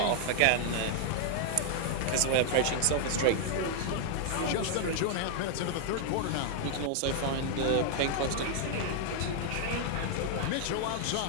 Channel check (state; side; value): different; both; correlation 0.00